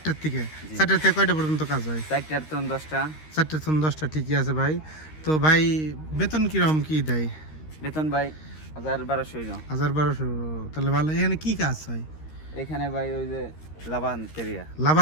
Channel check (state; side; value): late; right; 13 ms